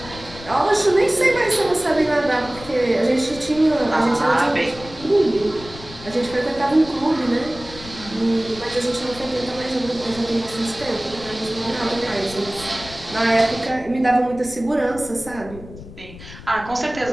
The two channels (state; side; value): noise; left; rumble, 16 dB below the sound